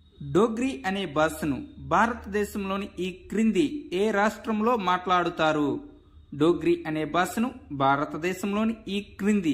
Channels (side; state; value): both; identical; correlation 1.00